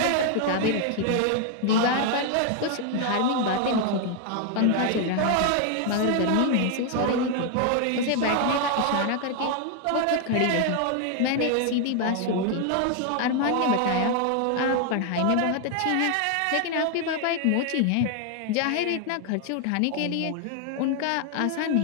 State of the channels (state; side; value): different; both; correlation 0.00